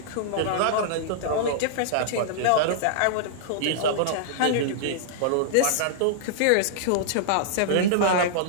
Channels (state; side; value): different; both; correlation -0.02